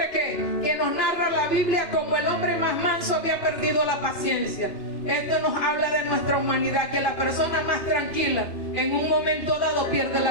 que nos narra la Biblia como el hombre más manso, había perdido la paciencia. Esto nos habla de nuestra humanidad, que la persona más tranquila en un momento dado pierde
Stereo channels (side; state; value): right; late; 2.8 ms